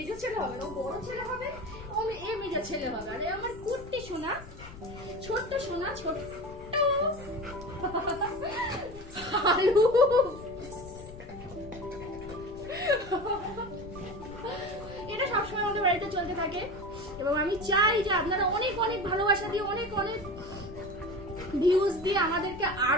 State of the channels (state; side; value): noise; left; rumble, 15 dB below the sound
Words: ছেলে হবে না, ও বড় ছেলে হবে, ও এ মেজো ছেলে হবে। আর আমার কুট্টি সোনা, ছোট্ট সোনা, ছোট্ট হালু। এটা সবসময় আমাদের বাড়িতে চলতে থাকে এবং আমি চাই যে আপনারা অনেক অনেক ভালোবাসা দিয়ে, অনেক অনেক ভিউজ দিয়ে আমাদেরকে